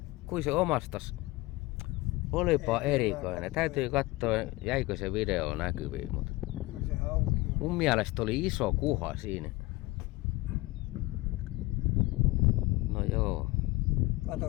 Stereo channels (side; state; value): right; quieter; 20.9 dB